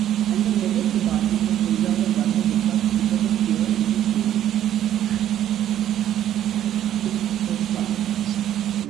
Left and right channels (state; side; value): quieter; left; 11.3 dB